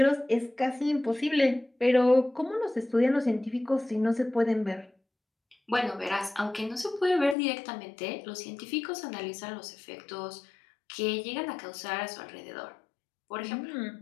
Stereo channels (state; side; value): drops out; right; at 7.4 s